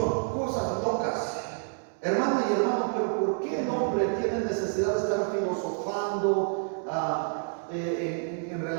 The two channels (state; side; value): silent; left; 59 dB below the other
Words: Cosas locas. Hermana y hermano, pero ¿por qué el hombre tiene necesidad de estar filosofando en